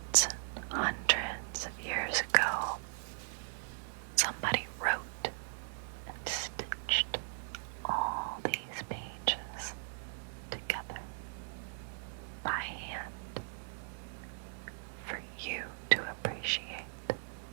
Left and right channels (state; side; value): silent; left; digital silence